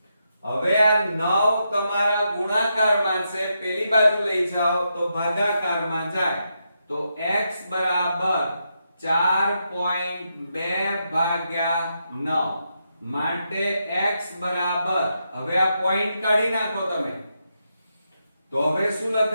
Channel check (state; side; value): inverted; both; correlation -0.83